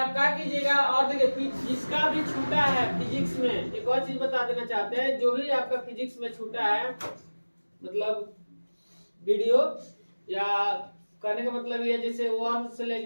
क्या कीजिएगा, और देखिए जिसका भी छूटा है फिजिक्स में, एक और चीज बता देना चाहते हैं, जो भी आपका फिजिक्स में छूटा है, मतलब वीडियो या करने का मतलब ये जैसे 1 से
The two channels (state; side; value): inverted; both; correlation -1.00